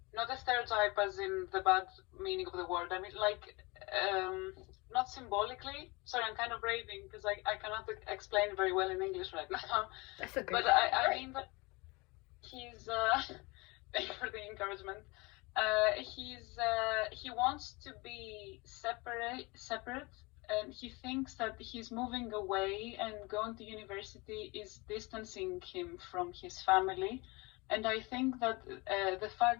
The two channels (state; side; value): quieter; right; 25.9 dB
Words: not a stereotype as in the bad meaning of the word. I mean, like, not symbolically. Sorry, I'm kind of raving because I cannot explain very well in English right now. That's okay. But I mean that he's, thank you for the encouragement. He wants to be separate and he thinks that he's moving away and going to university is distancing him from his family. And I think that the